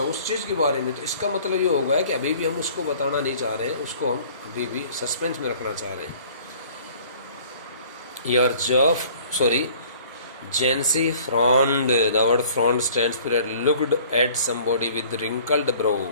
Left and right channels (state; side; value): inverted; both; correlation -0.51